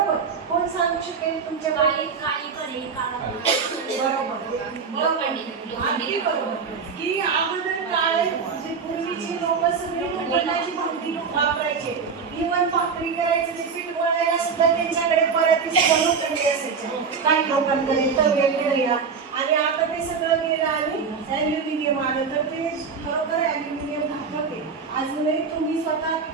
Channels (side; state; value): left; quieter; 5.6 dB